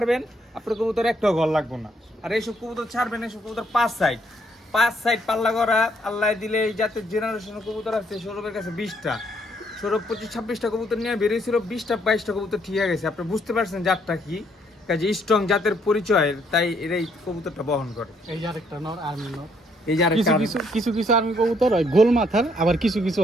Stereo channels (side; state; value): both; normal; correlation 0.69